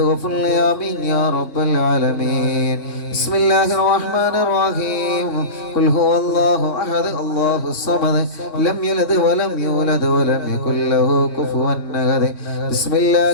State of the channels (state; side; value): late; right; 3.6 ms